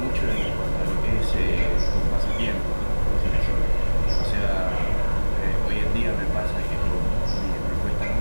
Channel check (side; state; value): both; inverted; correlation -1.00